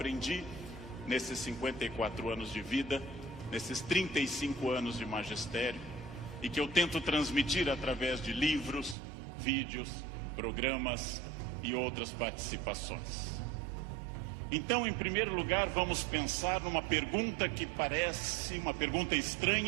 nesses 54 anos de vida, nesses 35 anos de magistério, e que eu tento transmitir através de livros, vídeos, programas e outras participações. Então, em primeiro lugar, vamos pensar numa pergunta que parece uma pergunta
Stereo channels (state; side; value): drops out; left; at 9.0 s